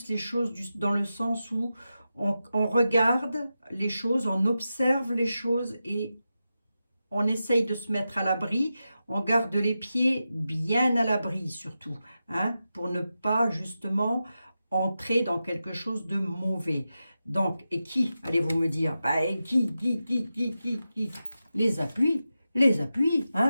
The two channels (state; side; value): inverted; both; correlation -0.91